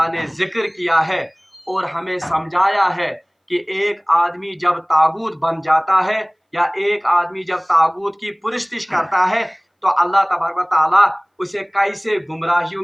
نے ذکر کیا ہے اور ہمیں سمجھایا ہے کہ ایک آدمی جب تاغوت بن جاتا ہے یا ایک آدمی جب تاغوت کی پرستش کرتا ہے تو اللہ تبارک و تعالیٰ اسے کیسے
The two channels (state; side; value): identical; both; correlation 1.00